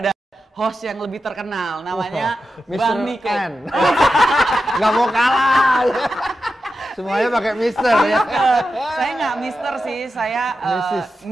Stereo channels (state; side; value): normal; both; correlation 0.90